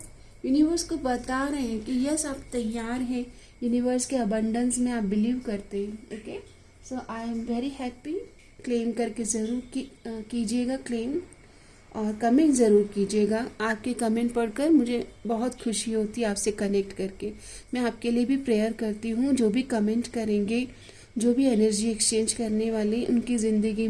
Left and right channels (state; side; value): identical; both; correlation 1.00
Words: यूनिवर्स को बता रहे हैं कि यस आप तैयार हैं, यूनिवर्स के अबंडेंस में आप बिलीव करते हैं। Okay, so I am very happy. Claim करके ज़रूर कीजिएगा क्लेम, और कमेंट ज़रूर कीजिएगा। आपके कमेंट पढ़कर मुझे बहुत खुशी होती है आपसे कनेक्ट करके। मैं आपके लिए भी प्रेयर करती हूँ, जो भी कमेंट करेंगे, जो भी एनर्जी एक्सचेंज करने वाले, उनकी ज़िंदगी